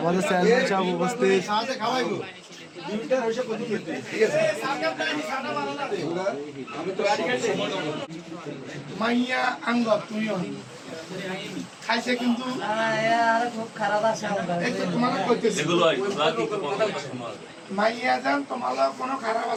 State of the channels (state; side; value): identical; both; correlation 1.00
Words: চেয়ারম্যান সাহেব উপস্থিত। মাইয়া আঙ্গ তুমিও খাইছে কিন্তু খুব খারাপ আছে মাইয়া যান তোমার কোনো খারাপ